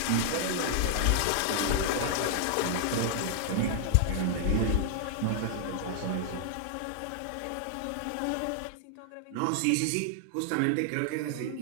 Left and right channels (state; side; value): different; both; correlation 0.00